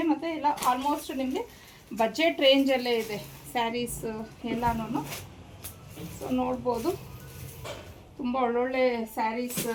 ಮತ್ತು ಎಲ್ಲ ಆಲ್ಮೋಸ್ಟ್ ನಿಮಗೆ ಬಜೆಟ್ ರೇಂಜಲ್ಲೇ ಇದೆ ಸ್ಯಾರೀಸ್ ಎಲ್ಲನೂ. ಸೊ ನೋಡ್ಬೋದು ತುಂಬ ಒಳ್ಳೊಳ್ಳೆ ಸ್ಯಾರೀಸ್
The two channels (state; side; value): identical; both; correlation 1.00